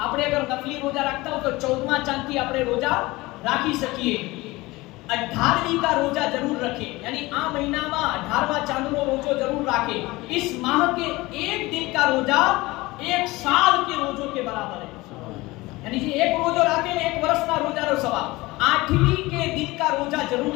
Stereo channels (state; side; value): quieter; right; 20.9 dB